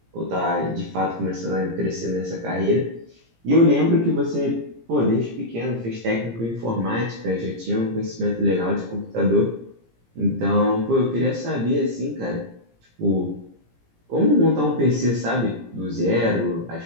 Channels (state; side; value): late; left; 17 ms